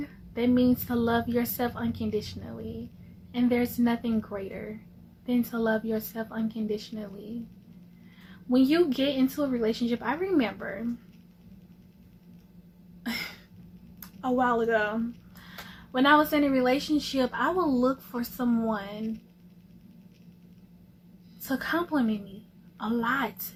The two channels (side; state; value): both; identical; correlation 1.00